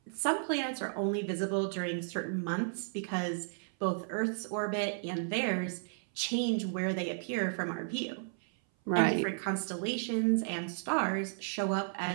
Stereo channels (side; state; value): left; silent; 55 dB below the other